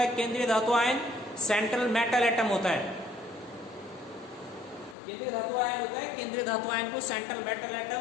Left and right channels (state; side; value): drops out; right; at 5.0 s